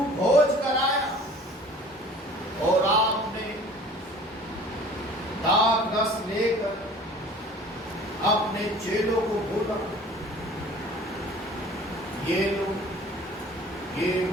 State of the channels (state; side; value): normal; both; correlation 0.48